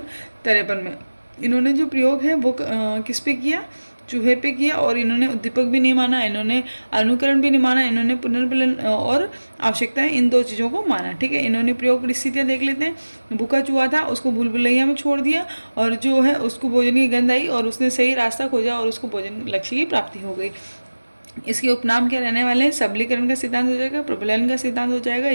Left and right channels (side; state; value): both; inverted; correlation -1.00